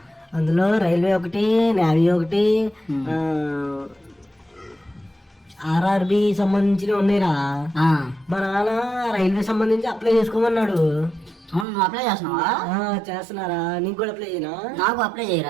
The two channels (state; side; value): drops out; left; at 11.7 s